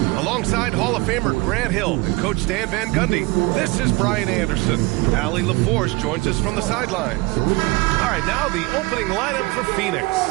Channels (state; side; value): quieter; left; 23.5 dB